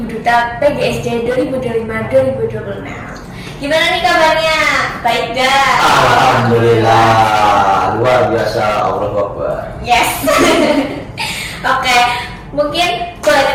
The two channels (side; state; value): both; identical; correlation 1.00